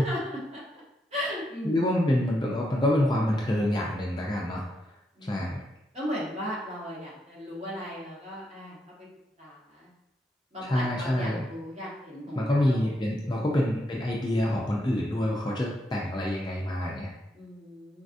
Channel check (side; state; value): both; normal; correlation 0.81